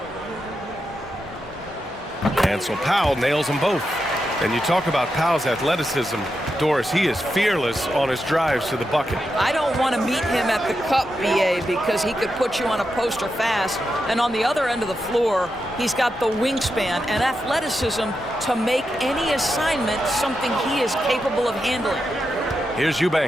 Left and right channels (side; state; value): both; normal; correlation 0.87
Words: And so Powell nails them both. And you talk about Powell's athleticism, Doris, he is fearless on his drives to the bucket. I don't want to meet him at the cup, BA, because he could put you on a poster fast. And on the other end of the floor, he's got the wingspan and athleticism to make any assignment something he is capable of handling. Here's